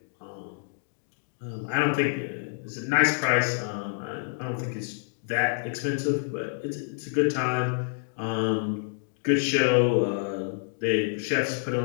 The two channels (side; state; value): right; silent; digital silence